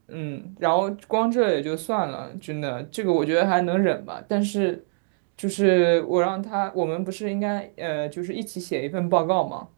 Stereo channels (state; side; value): silent; left; digital silence